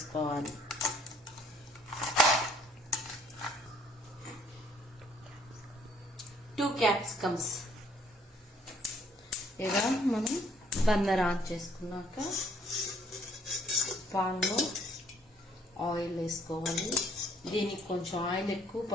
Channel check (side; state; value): both; normal; correlation 0.63